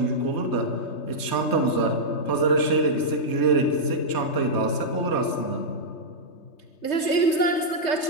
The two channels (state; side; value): late; right; 3.2 ms